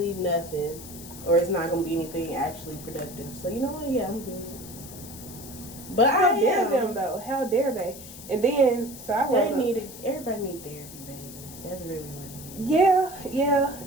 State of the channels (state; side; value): noise; left; hiss, 15 dB below the sound